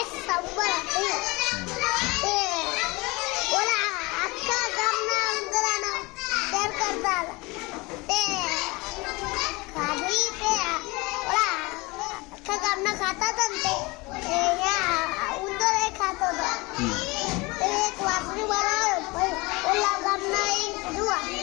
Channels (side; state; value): right; quieter; 24.4 dB